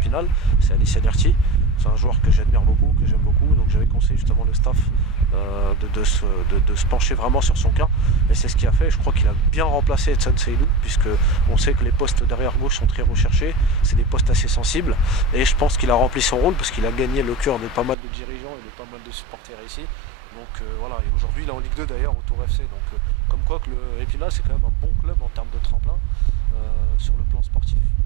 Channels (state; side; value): drops out; left; at 17.9 s